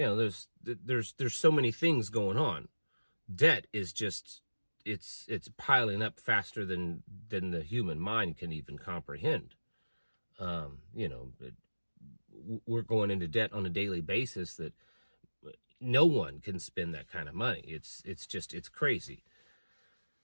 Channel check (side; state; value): both; inverted; correlation -1.00